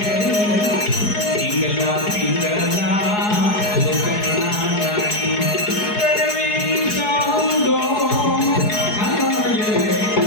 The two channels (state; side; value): late; right; 4.7 ms